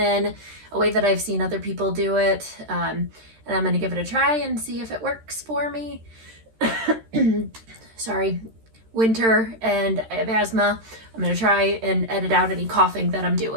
a way that I've seen other people do it. And I'm going to give it a try and see if it works for me. Sorry, winter and I have asthma. I'm going to try and edit out any coughing that I'm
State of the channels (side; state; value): left; late; 13 ms